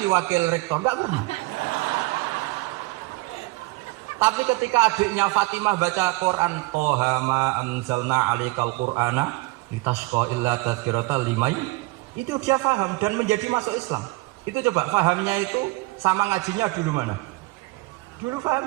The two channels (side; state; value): left; quieter; 22.7 dB